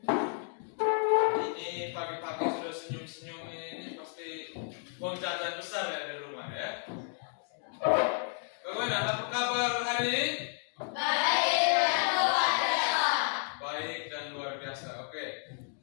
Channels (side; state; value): right; silent; 56 dB below the other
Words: Ini pagi-pagi sudah senyum-senyum ini pasti uang jajan besar ya di rumah ya. Bagaimana? Apa kabar hari ini? Baik dan luar biasa. Oke.